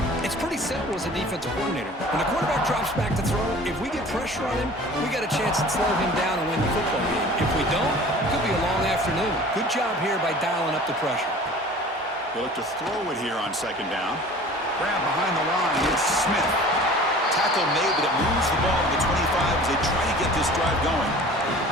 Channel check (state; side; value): normal; both; correlation 0.44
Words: It's pretty simple as a defensive coordinator. When the quarterback drops back to throw, if we get pressure on him, we got a chance to slow him down and win the football game. If we don't, it could be a long afternoon. Good job here by dialing up the pressure. They look to throw it here on second down. Grab behind the line. It's Smith. Tackle made, but it moves the ball to the 25 as they try to get this drive going.